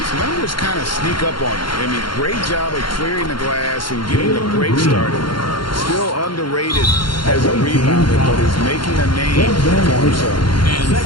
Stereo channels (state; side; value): late; right; 0.72 ms